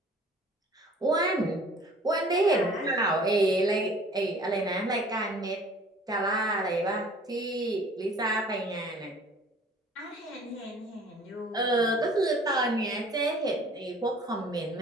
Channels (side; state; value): both; normal; correlation 0.51